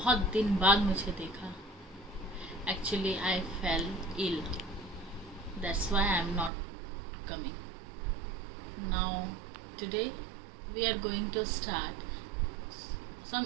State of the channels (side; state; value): left; drops out; at 6.5 s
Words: दिन बाद मुझे देखा। Actually I fell ill, that's why I am not coming now. Today we are going to start some